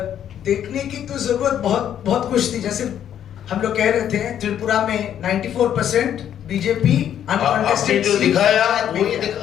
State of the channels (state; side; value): quieter; right; 10.0 dB